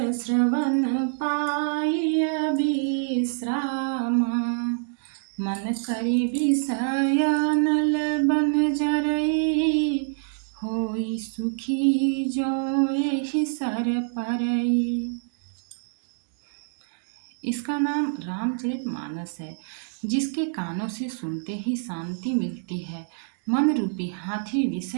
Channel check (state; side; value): silent; left; digital silence